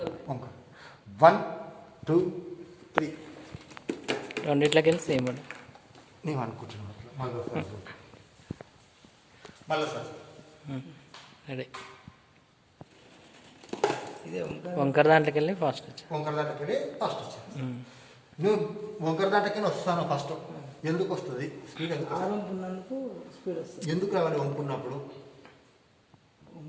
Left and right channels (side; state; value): both; identical; correlation 1.00